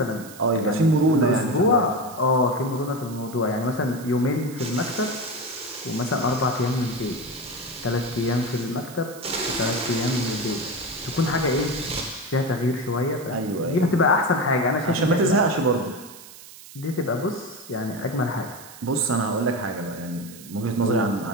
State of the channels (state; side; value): noise; right; hiss, 18 dB below the sound